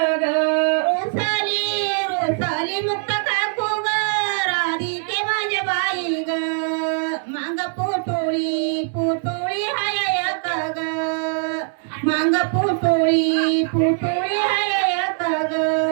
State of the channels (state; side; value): silent; left; 60 dB below the other